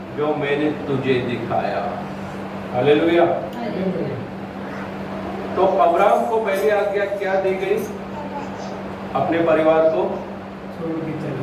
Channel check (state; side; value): identical; both; correlation 1.00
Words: जो मैंने तुझे दिखाया। हालेलुया। तो अब्राहम को पहली आज्ञा क्या दी गई? अपने परिवार को